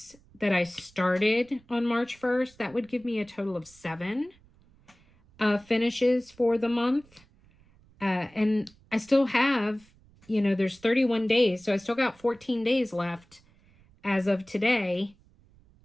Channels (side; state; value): right; noise; rumble, 29 dB below the sound